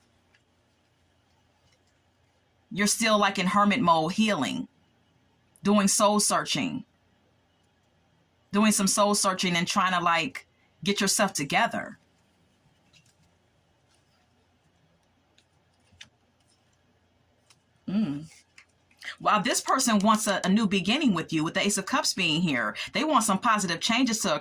You're still like in hermit mode, healing, doing soul searching, doing some soul searching and trying to like get yourself together. While this person wants a new beginning with you, with the Ace of Cups being here, they want some positive changes to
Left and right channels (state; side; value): identical; both; correlation 1.00